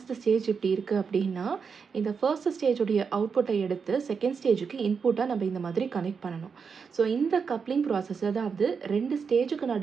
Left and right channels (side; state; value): left; quieter; 5.8 dB